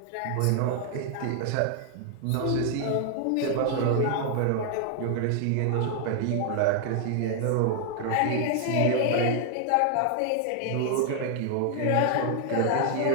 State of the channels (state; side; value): different; both; correlation 0.00